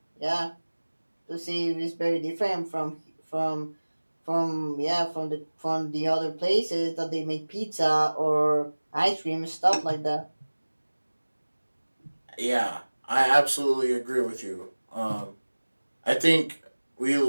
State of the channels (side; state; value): both; inverted; correlation -1.00